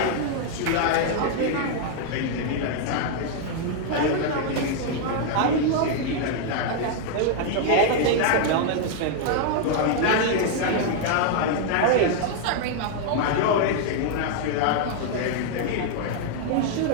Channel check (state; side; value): different; both; correlation 0.00